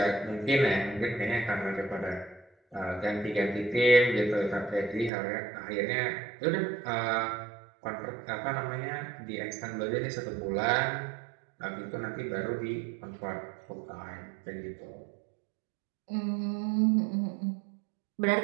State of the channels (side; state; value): left; drops out; at 5.1 s